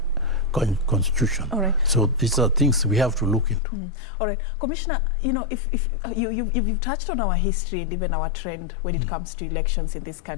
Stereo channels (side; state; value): right; drops out; at 3.6 s